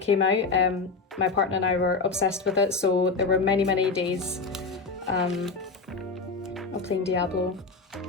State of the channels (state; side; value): quieter; right; 4.3 dB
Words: came out. My partner and I were obsessed with it, so there were many, many days of playing Diablo.